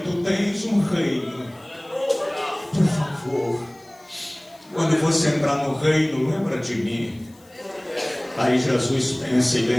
tens um reino. Por favor, quando você entrar no reino, lembra de mim. Aí Jesus pensa e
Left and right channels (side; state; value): left; noise; hiss, 29 dB below the sound